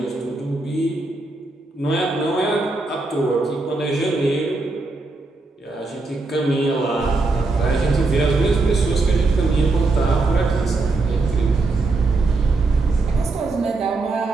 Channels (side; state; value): left; quieter; 3.4 dB